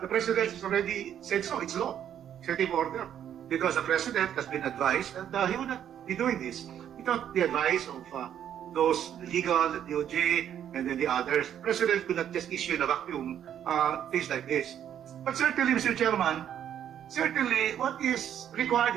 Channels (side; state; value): left; quieter; 9.8 dB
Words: President has already said so, it's law, executive order. Because the President has been advised that he would not be doing this without the advice of those legal, the DOJ, and then the others. The President could not just issue in a vacuum things like this. But certainly, Mr. Chairman, certainly what is required